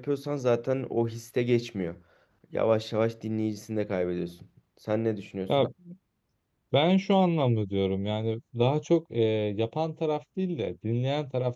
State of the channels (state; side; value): identical; both; correlation 1.00